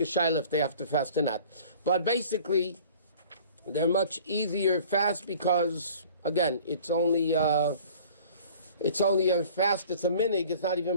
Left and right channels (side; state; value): both; inverted; correlation -0.48